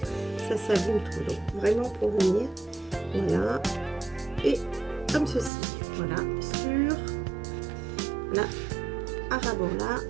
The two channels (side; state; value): left; drops out; at 5.5 s